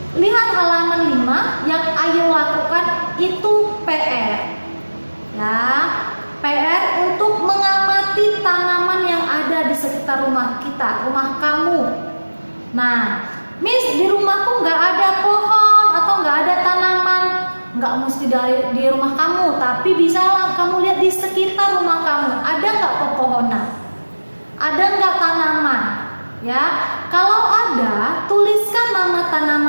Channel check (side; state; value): both; inverted; correlation -1.00